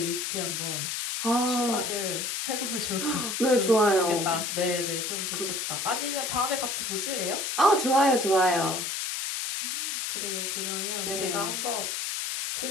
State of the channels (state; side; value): noise; left; hiss, 2 dB below the sound